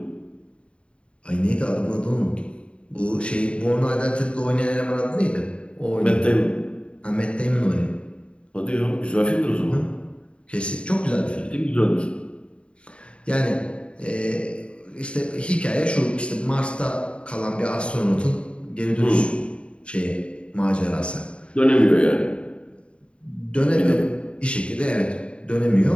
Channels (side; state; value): right; late; 0.058 ms